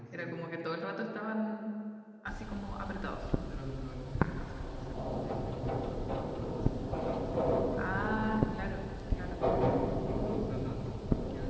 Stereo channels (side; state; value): both; identical; correlation 1.00